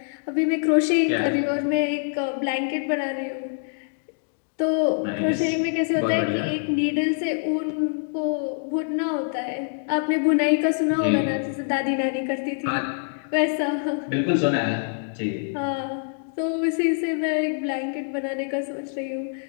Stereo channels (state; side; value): silent; right; digital silence